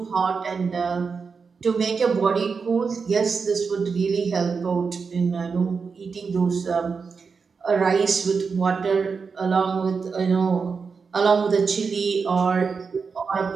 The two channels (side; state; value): left; quieter; 5.2 dB